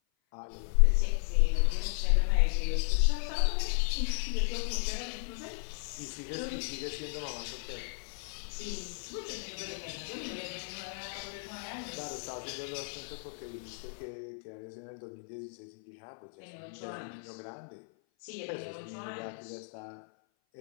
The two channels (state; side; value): silent; right; 55 dB below the other